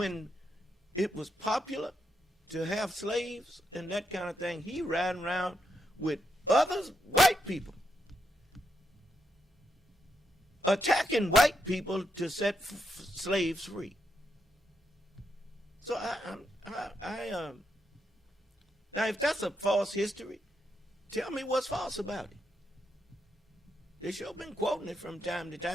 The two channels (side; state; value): both; normal; correlation 0.81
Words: it was popular to have slaves and that kind of thing, he ran around with others, white people, attacking white people to set slaves free. So now, if that's a false history, tell me what's false about it. They sure been quoting it from time to